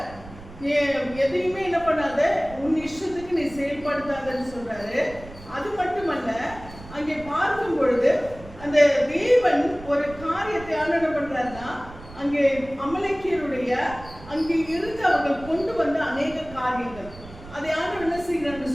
எதையுமே என்ன பண்ணாத, உன் இஷ்டத்துக்கு நீ செயல்படுத்தாதன்னு சொல்றாரு. அது மட்டுமல்ல, அங்கே பார்க்கும் பொழுது அந்த தேவன் ஒரு காரியத்தை என்ன பண்றாருன்னா, அங்கே அமலேக்கியருடைய அங்கே இருந்து அவர்கள் கொண்டு வந்த அநேக காரியங்கள், அதை ஆண்டவர் என்ன செய்யறான்னு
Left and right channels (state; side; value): noise; right; rumble, 17 dB below the sound